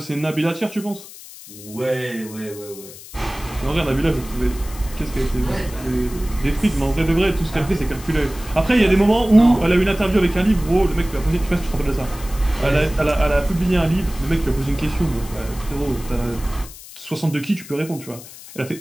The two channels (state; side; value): noise; left; hiss, 17 dB below the sound